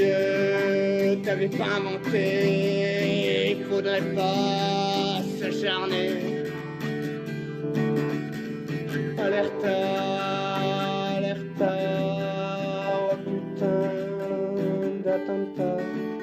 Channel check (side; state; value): both; identical; correlation 1.00